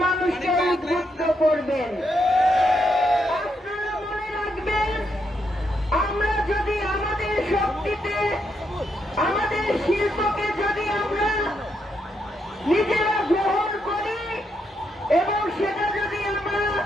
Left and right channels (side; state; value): both; normal; correlation 0.79